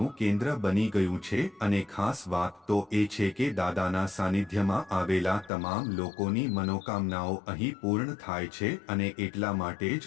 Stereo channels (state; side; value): drops out; right; at 5.5 s